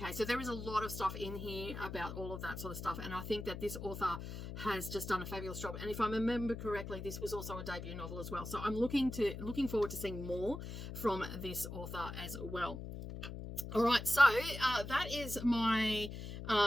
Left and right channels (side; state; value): left; noise; hum, 8 dB below the sound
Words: so there is a lot of stuff in here about all of that sort of stuff, and I think that this author has just done a fabulous job. And if I remember correctly, this was also a debut novel as well. So I'm looking forward to seeing more from this author as well. All right, so that is my